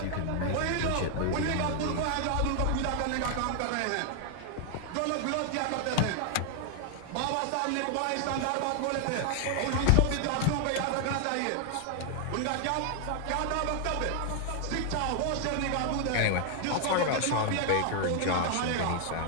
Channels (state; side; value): different; both; correlation 0.00